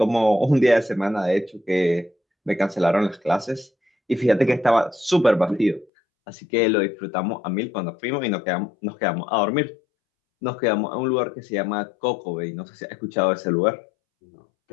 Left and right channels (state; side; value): drops out; right; at 5.9 s